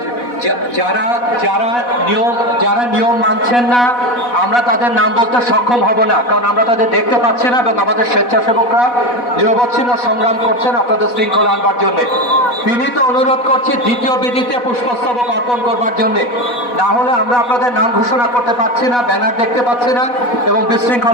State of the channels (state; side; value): late; right; 4.1 ms